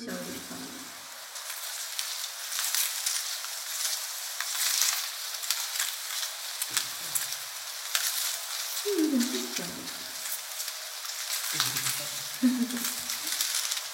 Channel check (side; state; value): both; identical; correlation 1.00